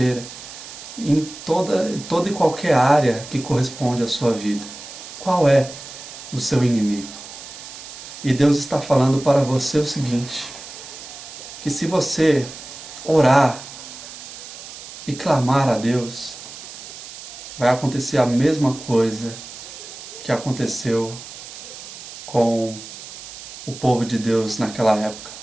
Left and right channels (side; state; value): right; noise; hiss, 13 dB below the sound